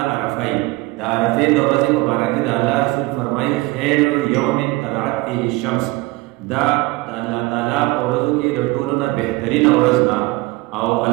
عرفه وي. د عرفې د ورځې په باره کې د الله رسول فرمایي خیر یوم طلعت فیه الشمس، دا د الله تعالی په ورځو کې د ټولو نه بهترینه ورځ ده. او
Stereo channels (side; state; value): left; quieter; 21.7 dB